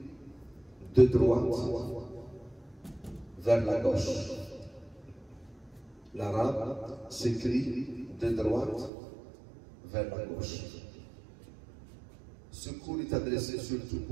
de droite vers la gauche. L'arabe s'écrit de droite vers la gauche. Ce cours est adressé surtout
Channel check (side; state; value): left; drops out; at 8.9 s